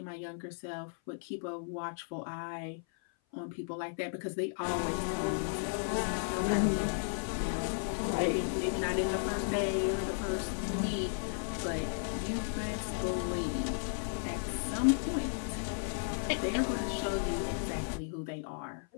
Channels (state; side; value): silent; right; 55 dB below the other